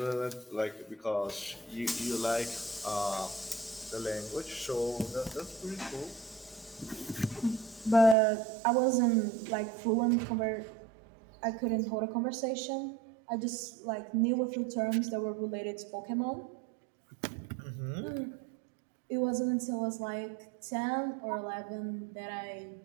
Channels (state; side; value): drops out; left; at 8.2 s